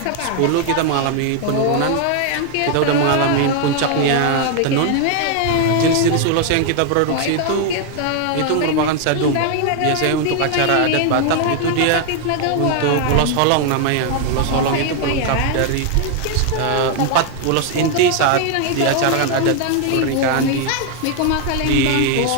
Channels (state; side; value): different; both; correlation 0.00